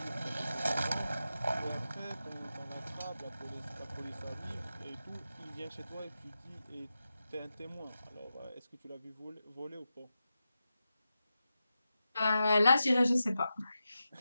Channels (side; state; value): both; inverted; correlation -0.91